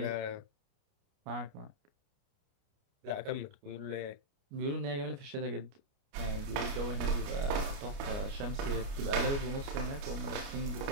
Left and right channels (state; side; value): late; left; 29 ms